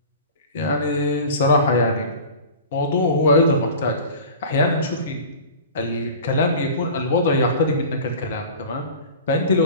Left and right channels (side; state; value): both; inverted; correlation -0.38